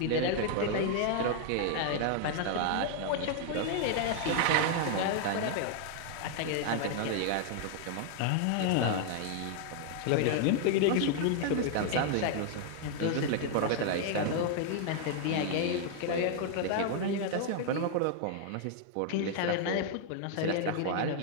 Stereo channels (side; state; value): both; different; correlation 0.00